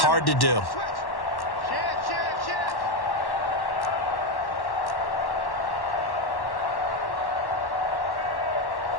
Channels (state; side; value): late; right; 1.1 ms